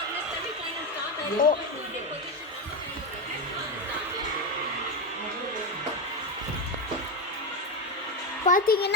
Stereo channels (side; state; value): both; normal; correlation 0.11